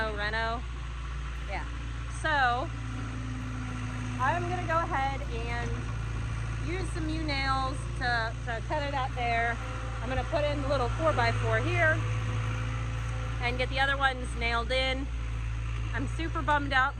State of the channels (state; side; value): identical; both; correlation 1.00